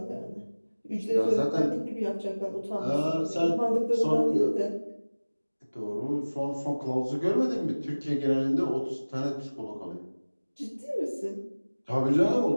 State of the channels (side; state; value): both; inverted; correlation -1.00